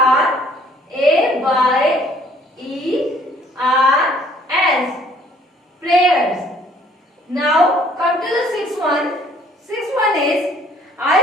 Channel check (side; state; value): both; normal; correlation 0.59